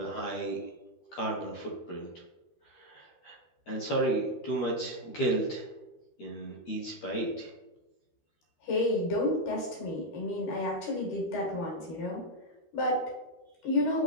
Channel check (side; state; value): right; late; 12 ms